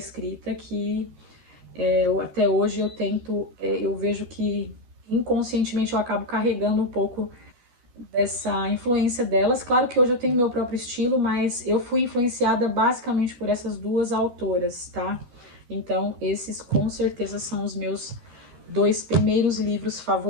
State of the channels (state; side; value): late; left; 13 ms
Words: que Até hoje eu tento, eu vejo que inconscientemente eu acabo carregando um pouco dessa influência delas. Claro que hoje eu tenho meu próprio estilo, mas eu fui influenciada basicamente por essas duas autoras, tá? Então, esses com certeza são os meus dois primeiros livros